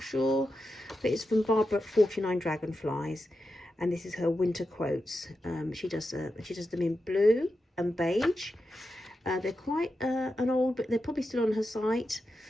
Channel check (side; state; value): both; normal; correlation 0.89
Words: sure, but it's from Barbara at 49 Dragonflies, and this is her winter quotes. She does them in blue and beige. They're quite an old, but they're probably still on her site.